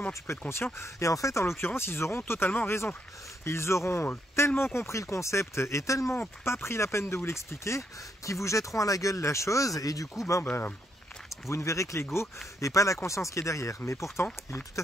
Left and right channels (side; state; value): both; normal; correlation 0.76